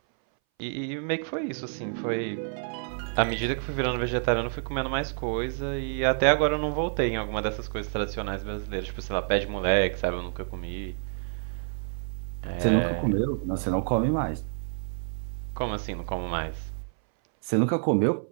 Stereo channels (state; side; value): silent; left; 59 dB below the other